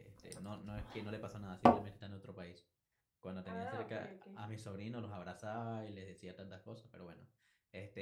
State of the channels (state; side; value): identical; both; correlation 1.00